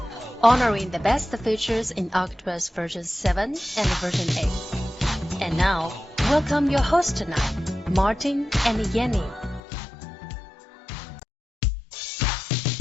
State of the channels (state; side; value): drops out; right; at 9.6 s